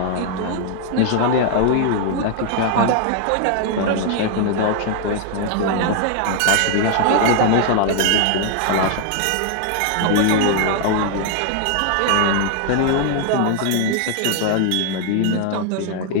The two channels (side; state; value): both; different; correlation 0.00